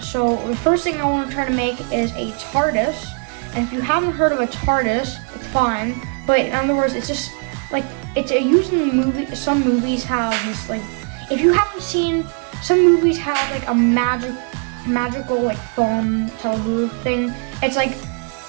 So the first thing I want to try to make is a TARDIS, and if you haven't heard of a TARDIS, it's fine, but in other words, it's just like it's used in the movie. Some movies have this, like, if you haven't seen, some movies have like a magical like phone telebooth thing. It's like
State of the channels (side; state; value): left; quieter; 38.9 dB